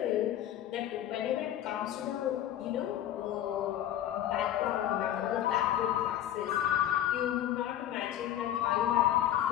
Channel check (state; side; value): quieter; right; 11.9 dB